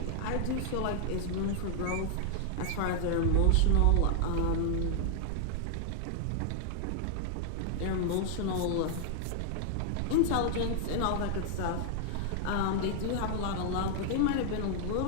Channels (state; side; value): different; both; correlation 0.00